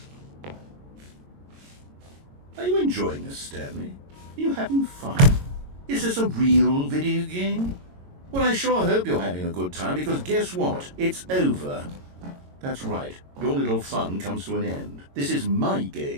Are you enjoying this, Stanley? Are you having fun? Is this a real video game? Well, I sure hope you're having a good time, because guess what? It's over. That's right. Your little fun comes to an end. This is my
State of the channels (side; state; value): left; late; 22 ms